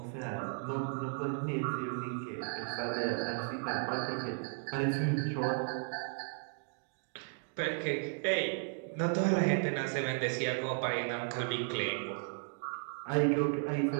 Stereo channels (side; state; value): left; silent; 54 dB below the other